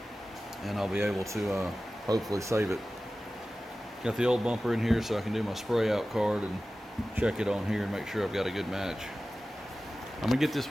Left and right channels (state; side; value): normal; both; correlation 0.96